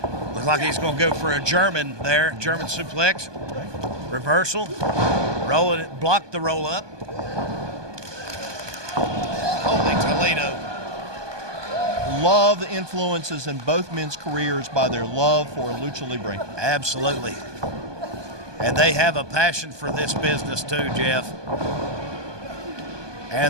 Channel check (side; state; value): left; late; 1.2 ms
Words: Looks like he's going to go for a German there. German suplex. Reversal. Roll it. Block the roll up. Holy Toledo. Love the influences in both men's careers by their love for Lucha Libre. Absolutely. And they have a passion for this business too, Jeff.